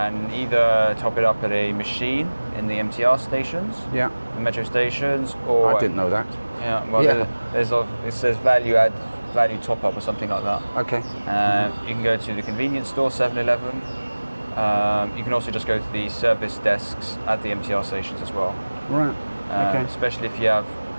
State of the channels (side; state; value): both; inverted; correlation -1.00